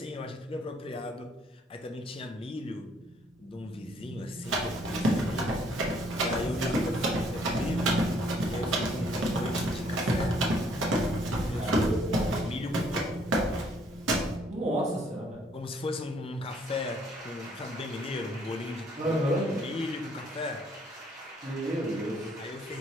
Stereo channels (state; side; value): normal; both; correlation 0.65